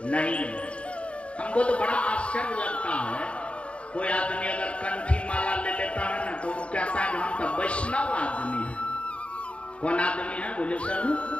नहीं है। हमको तो बड़ा आश्चर्य लगता है, कोई आदमी अगर कंठी माला ले लेता है ना तो वो कहता है हम तो वैष्णव आदमी है। कौन आदमी है? बोले सर,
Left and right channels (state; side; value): late; right; 0.060 ms